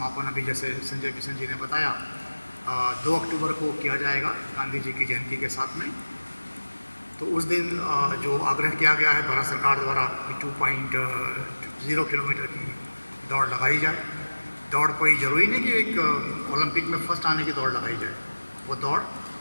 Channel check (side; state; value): both; inverted; correlation -1.00